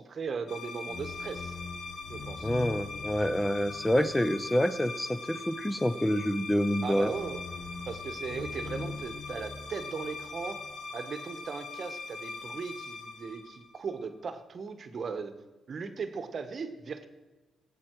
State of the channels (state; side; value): normal; both; correlation 0.92